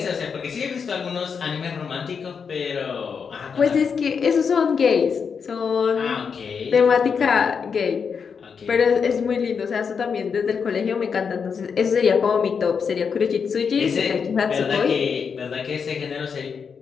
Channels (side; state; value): right; quieter; 6.2 dB